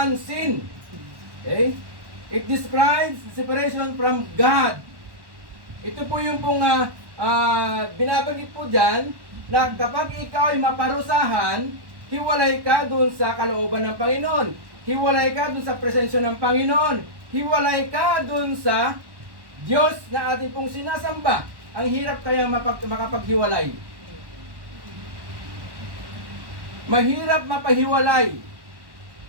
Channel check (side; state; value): left; late; 1.1 ms